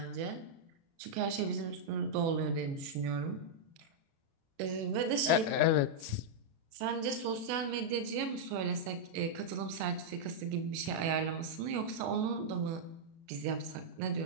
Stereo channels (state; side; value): late; left; 36 ms